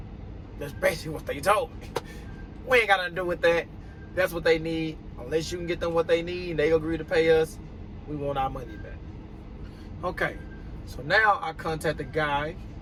That's basically what they told me. We ain't got nothing to do with that. That's what they need. Unless you can get them what they need and they agree to pay us, we want our money back. Okay, so now I contact the guy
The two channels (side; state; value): both; identical; correlation 1.00